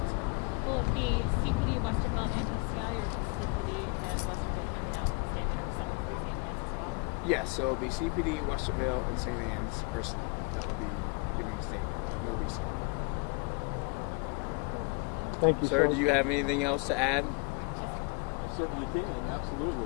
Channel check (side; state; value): right; quieter; 31.2 dB